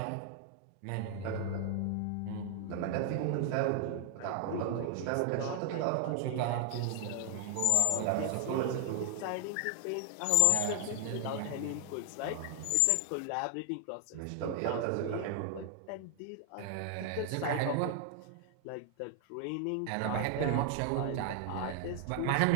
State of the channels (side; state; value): both; different; correlation 0.00